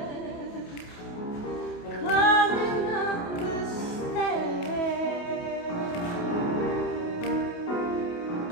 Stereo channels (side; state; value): right; late; 28 ms